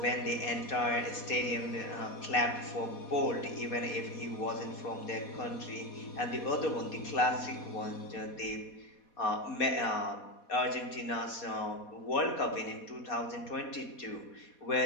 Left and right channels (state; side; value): late; right; 4.2 ms